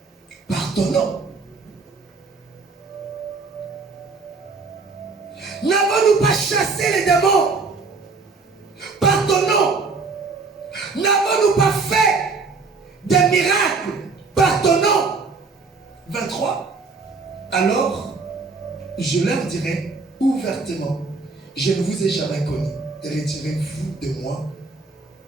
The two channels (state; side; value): quieter; left; 4.2 dB